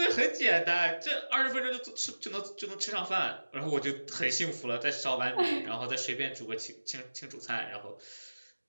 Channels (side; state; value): both; inverted; correlation -1.00